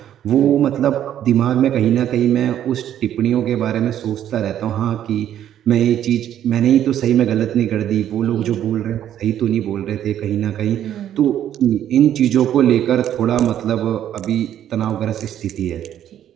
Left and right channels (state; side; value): quieter; left; 10.8 dB